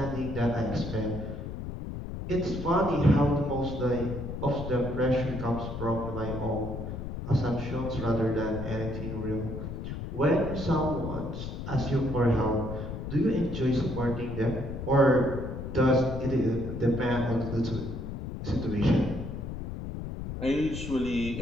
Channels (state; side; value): noise; left; rumble, 6 dB below the sound